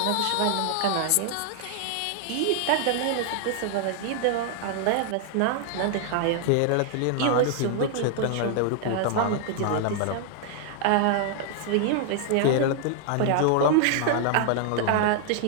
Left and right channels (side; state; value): both; different; correlation 0.00